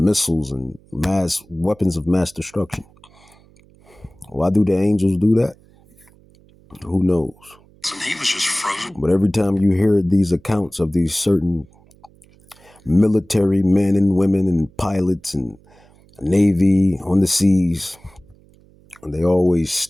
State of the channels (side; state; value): right; noise; hum, 28 dB below the sound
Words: and mass weapons of mass destruction. Why do the angels do that? Who knows? And he was just frozen. But every time you hear these accounts of these certain military men and women and pilots and Navy on the seas, they always